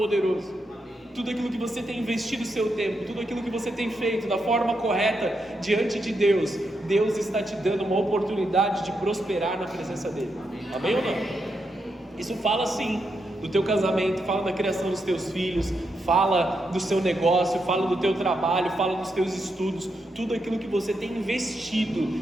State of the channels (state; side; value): normal; both; correlation 0.83